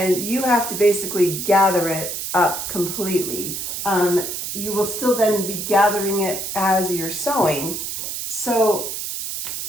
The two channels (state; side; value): noise; right; hiss, 5 dB below the sound